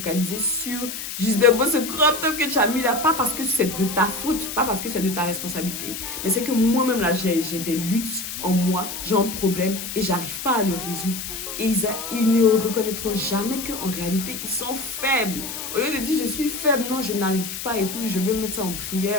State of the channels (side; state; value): left; noise; hiss, 7 dB below the sound